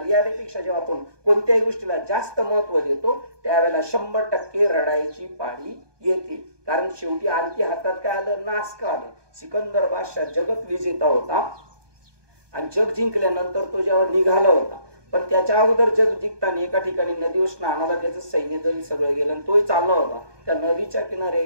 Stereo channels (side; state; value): left; late; 1.2 ms